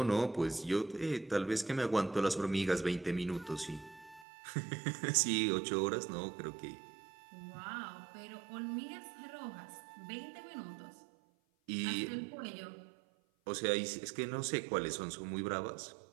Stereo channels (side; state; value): left; drops out; at 4.2 s